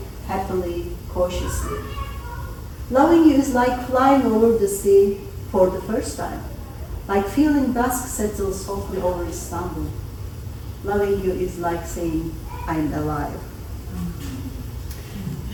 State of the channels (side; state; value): both; identical; correlation 1.00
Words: happily, cautiously. Loving you is like flying over the sea for the first time, like feeling dusk settle softly over Istanbul. Loving you is like saying, I'm alive.